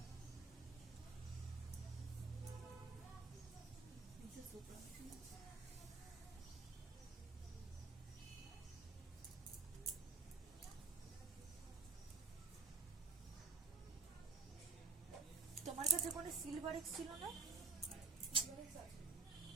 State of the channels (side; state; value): left; quieter; 4.6 dB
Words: তোমার কাছে কোনো silver x ছিল না?